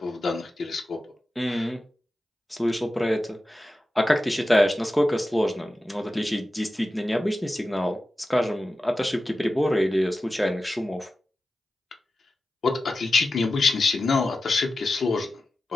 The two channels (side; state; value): both; normal; correlation 0.93